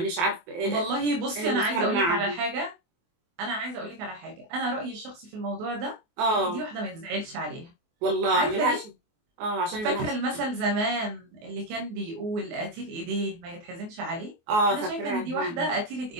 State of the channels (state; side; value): late; left; 24 ms